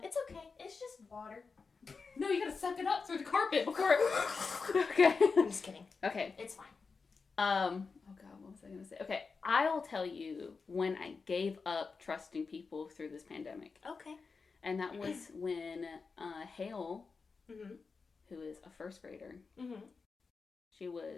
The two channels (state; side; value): quieter; right; 4.7 dB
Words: It's okay. It's just water. No, you gotta suck it up through the carpet before it... Okay. I'm just kidding. Okay. It's fine. Oh God, what was I gonna say? Okay, I'll tell you when I gave up trusting people through this pandemic. Okay. And that was when Hale, mm-hmm. who is a first grader, mm-hmm. she